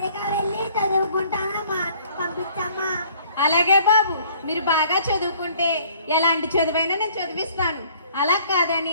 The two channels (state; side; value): inverted; both; correlation -0.56